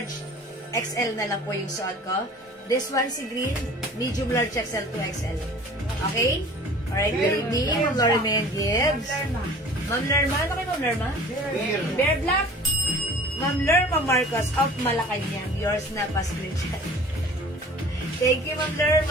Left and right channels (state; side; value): normal; both; correlation 0.45